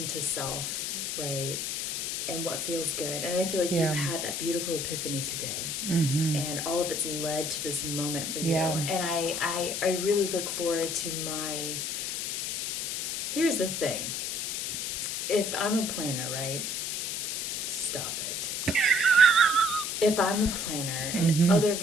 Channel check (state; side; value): noise; left; hiss, 2 dB below the sound